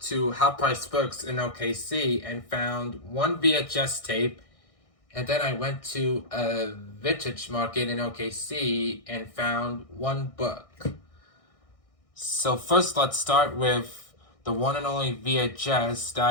to Half Price Books in OKC and found one VHS tape, and then I went to a vintage market in OKC and found one book. So first, let's start with the one and only VHS that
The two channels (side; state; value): right; late; 1.6 ms